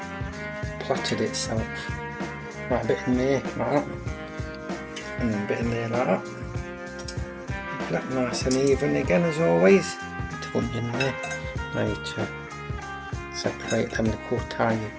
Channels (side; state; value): both; identical; correlation 1.00